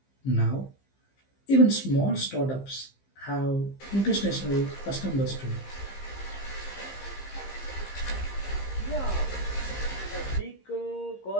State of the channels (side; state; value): right; late; 15 ms